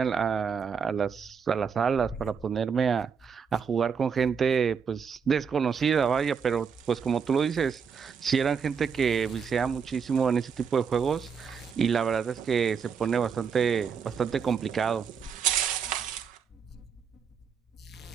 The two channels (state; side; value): quieter; left; 6.5 dB